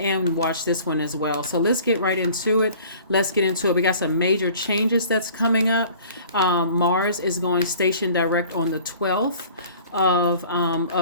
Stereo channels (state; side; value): inverted; both; correlation -0.48